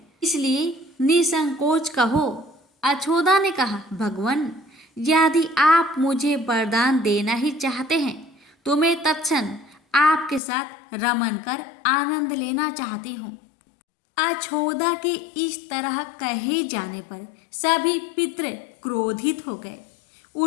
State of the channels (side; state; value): right; drops out; at 10.4 s